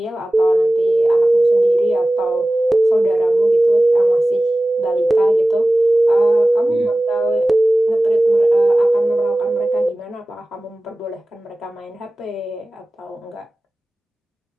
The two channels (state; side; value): normal; both; correlation 0.97